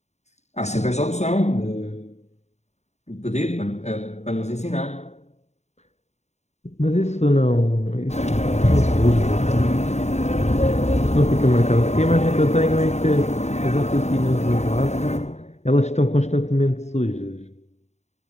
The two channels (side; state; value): right; late; 0.32 ms